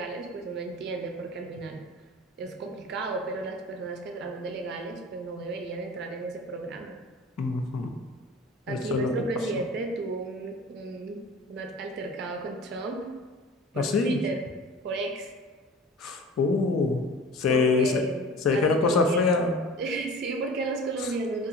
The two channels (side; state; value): both; normal; correlation 0.40